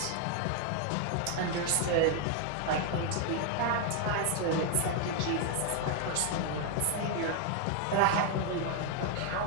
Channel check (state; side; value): different; both; correlation 0.00